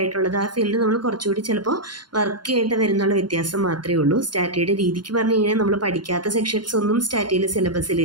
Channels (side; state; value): left; late; 0.71 ms